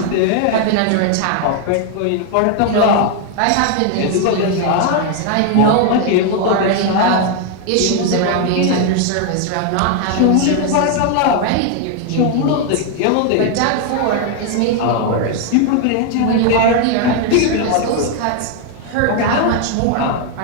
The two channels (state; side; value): different; both; correlation 0.00